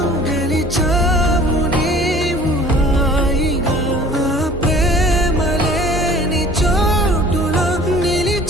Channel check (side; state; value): both; normal; correlation 0.49